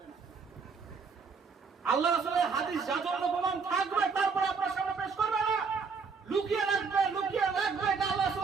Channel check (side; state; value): left; quieter; 5.2 dB